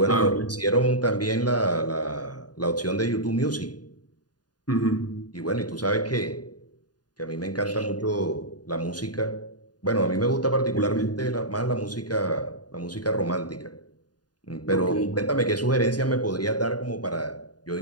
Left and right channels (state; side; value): late; right; 0.69 ms